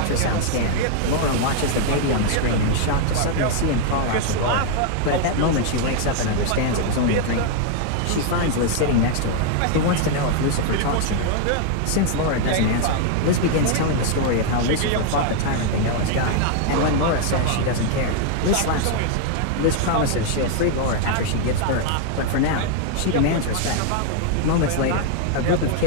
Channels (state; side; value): different; both; correlation 0.00